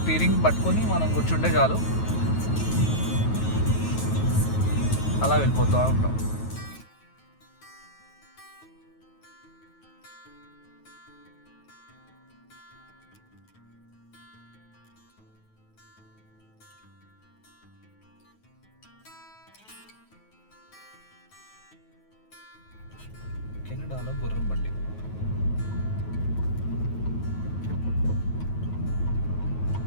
స్టీరింగ్ పట్టుకొని మనం కూర్చుంటే చాలు, అలా వెళ్ళిపోతూ ఉంటాం. కెనడాలో గుర్రం బండి.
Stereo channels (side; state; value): right; late; 9.3 ms